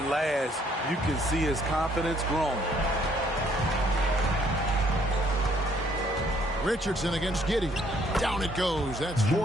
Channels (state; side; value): normal; both; correlation 0.65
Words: last. You can see his confidence growing. Richardson against Giddey. Down it goes. That's